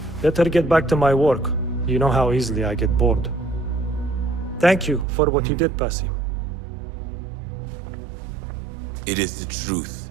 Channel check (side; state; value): left; drops out; at 5.1 s